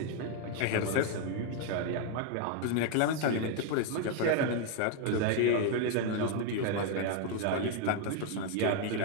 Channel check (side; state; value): both; different; correlation 0.01